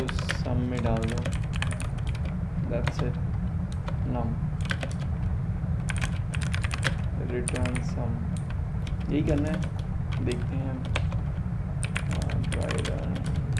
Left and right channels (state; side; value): identical; both; correlation 1.00